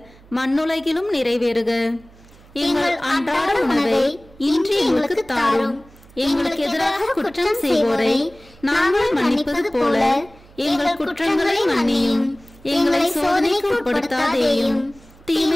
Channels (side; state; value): right; noise; hum, 25 dB below the sound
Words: மண்ணுலகிலும் நிறைவேறுக. எங்கள் அன்றாட உணவை இன்று எங்களுக்கு தாரும். எங்களுக்கு எதிராக குற்றம் செய்வோரை நாங்கள் மன்னிப்பது போல எங்கள் குற்றங்களை மன்னியும். எங்களை சோதனைக்கு உட்படுத்தாதேயும்,